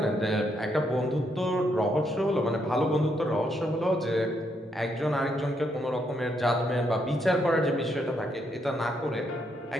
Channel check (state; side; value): normal; both; correlation 0.76